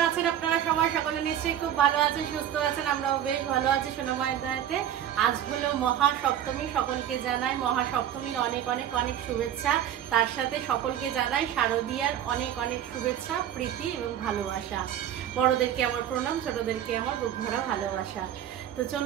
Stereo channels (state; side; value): quieter; left; 10.6 dB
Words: সকলে নিশ্চয়ই খুব ভালো আছেন, সুস্থ আছেন, আমরাও বেশ ভালো আছি সোনা মায়ের দয়াতে। আজ হলো মহাসপ্তমী, সকলকে জানাই মহাসপ্তমীর অনেক অনেক অনেক শুভেচ্ছা। তার সাথে সকলকে জানাই শারদীয়ার অনেক অনেক শুভেচ্ছা, প্রীতি এবং ভালোবাসা। বড়দেরকে আমার প্রণাম, ছোটদেরকে আমার বুক ভরা ভালোবাসা। তো